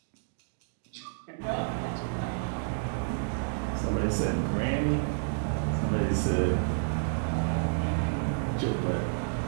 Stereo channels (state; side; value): silent; left; digital silence